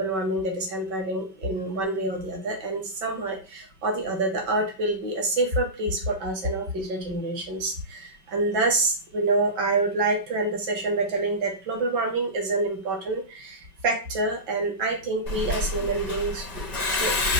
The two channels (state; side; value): late; left; 5.2 ms